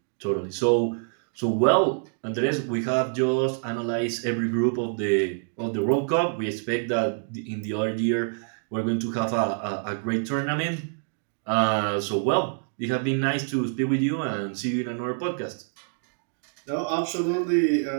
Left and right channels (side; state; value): left; silent; 61 dB below the other